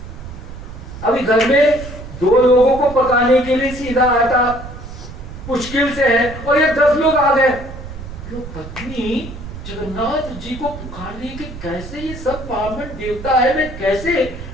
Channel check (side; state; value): right; noise; rumble, 12 dB below the sound